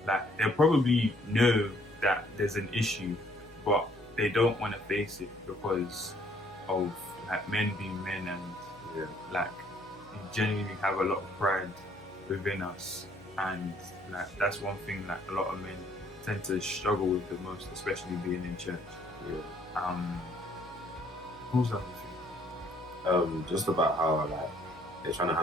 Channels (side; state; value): left; noise; hum, 23 dB below the sound